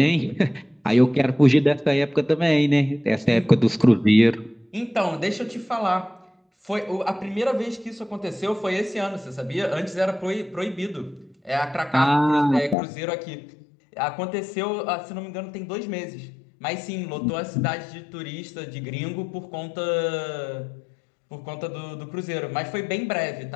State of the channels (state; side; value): drops out; right; at 12.8 s